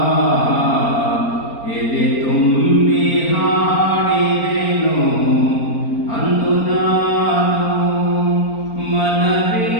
ಎದೆ ತುಂಬಿ ಹಾಡಿದೆ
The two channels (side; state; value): right; late; 4.3 ms